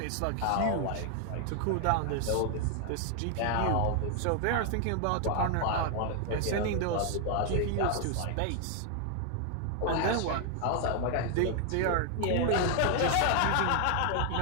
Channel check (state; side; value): different; both; correlation 0.00